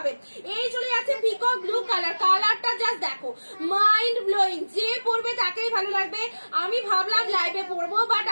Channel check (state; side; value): inverted; both; correlation -1.00